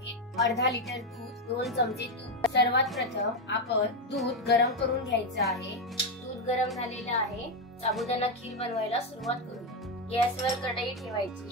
अर्धा लिटर दूध, 2 चमचे तूप। सर्वात प्रथम आपण दूध गरम करून घ्यायचं आहे। दूध गरम झालेलं आहे। साबुदाणा खीर बनवायला सुरुवात करू। गॅसवर कढई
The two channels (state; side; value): normal; both; correlation 0.08